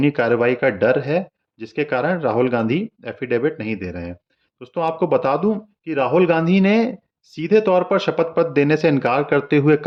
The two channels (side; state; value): both; identical; correlation 1.00